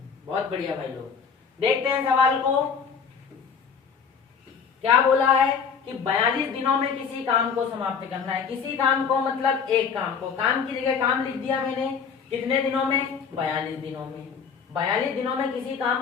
बहुत बढ़िया भाई लोग। देखते हैं सवाल को क्या बोला है कि 42 दिनों में किसी काम को समाप्त करना है। किसी काम को मतलब एक काम को, काम की जगह काम लिख दिया मैंने। कितने दिनों में, 42 दिनों में। 42 दिनों में किसी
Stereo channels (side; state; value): right; quieter; 6.3 dB